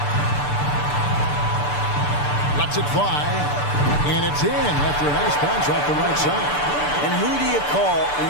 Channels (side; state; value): right; late; 6.8 ms